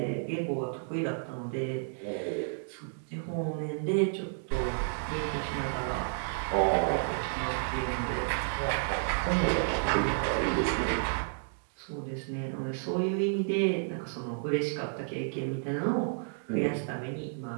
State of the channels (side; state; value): left; silent; digital silence